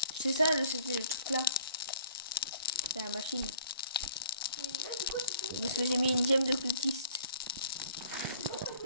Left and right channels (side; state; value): both; inverted; correlation -0.55